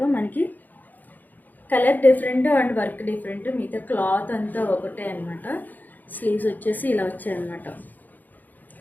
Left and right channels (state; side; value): late; right; 0.084 ms